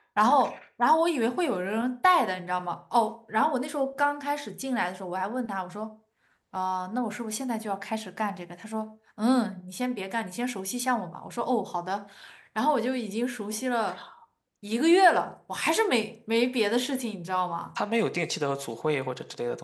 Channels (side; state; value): both; identical; correlation 1.00